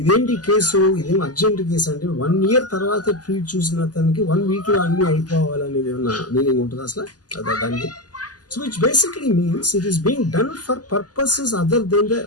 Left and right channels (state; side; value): late; right; 0.68 ms